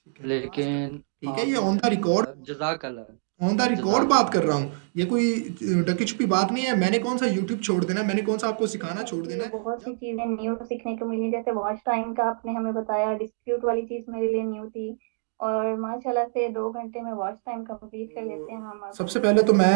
ठीक है, मास्टर। लेकिन ठीक है, ये आपने on the record, on the record जजाक बात अल्लाह। कर रहा हूँ। ये कोई ढकी छुपी बात नहीं है। मैंने कौन सा यूट्यूब छोड़ देना है, मैंने कौन सा आपको सिखाना छोड़ देना मुझे है। बहुत सी जब चीजें न्यू सीखने को मिली, जैसे वॉच टाइम का आपने हमें बताया, डिस्प्यूट वाली चीज मेरे लिए न्यू थी। और माशाल्लाह से 2 घंटे में वॉच टाइम कंप्लीट कर लेते हैं हम अब। सबसे पहले तो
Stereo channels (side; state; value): left; silent; digital silence